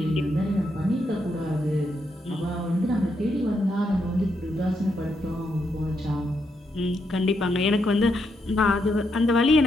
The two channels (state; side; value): normal; both; correlation 0.80